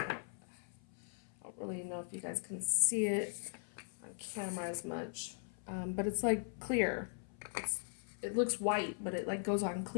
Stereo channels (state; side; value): silent; right; 51 dB below the other